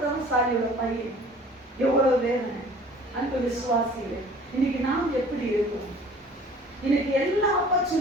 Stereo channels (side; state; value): both; normal; correlation 0.49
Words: பையன் எவ்வளவு வேதனை. அன்பு விசுவாசிகளே, இன்னைக்கு நாம் எப்படி இருக்கும்? இன்னைக்கு எல்லா